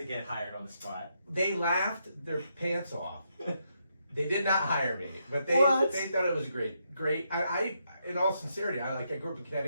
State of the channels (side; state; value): both; inverted; correlation -0.80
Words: get hired on the spot. They laughed their pants off. They did not hire me, but they thought it was great. I in all sincerity, I grew up in